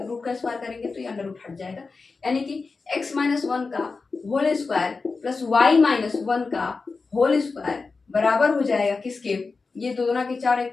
हैं, रूट का स्क्वायर करेंगे तो ये अंडर रूट हट जाएगा, यानी कि x माइनस 1 का whole square plus y minus 1 का होल स्क्वायर बराबर हो जाएगा किसके, ये 2 दूना के 4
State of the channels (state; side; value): quieter; right; 4.3 dB